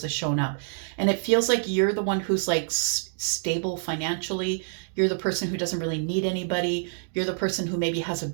has shown up. And it feels like you're the one who's like stable financially. You're the person who doesn't really need anybody. You're the person who maybe has a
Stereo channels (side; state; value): left; silent; digital silence